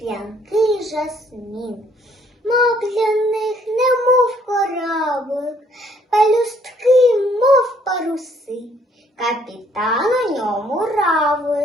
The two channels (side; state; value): both; normal; correlation 0.64